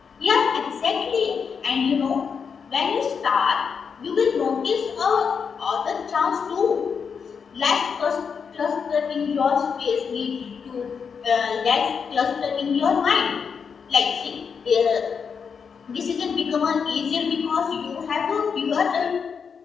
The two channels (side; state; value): right; quieter; 6.2 dB